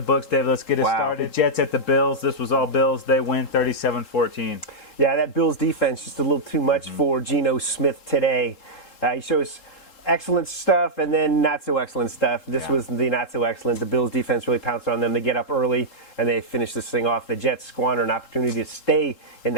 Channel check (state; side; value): late; right; 3.7 ms